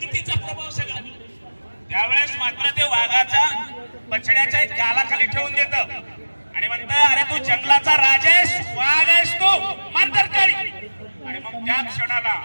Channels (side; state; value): both; inverted; correlation -1.00